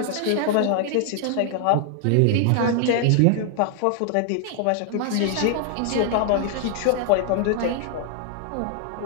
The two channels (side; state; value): both; different; correlation 0.00